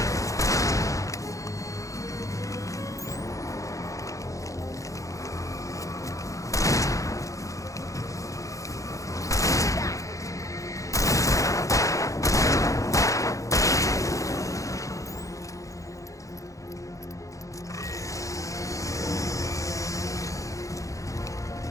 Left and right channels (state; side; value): late; right; 0.16 ms